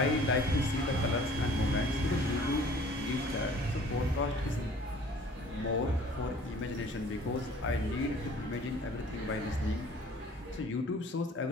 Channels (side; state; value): both; normal; correlation 0.51